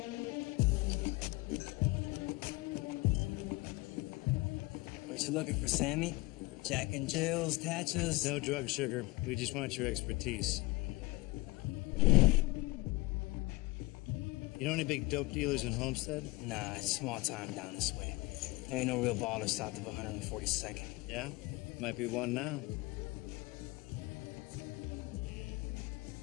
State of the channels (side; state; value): right; quieter; 22.2 dB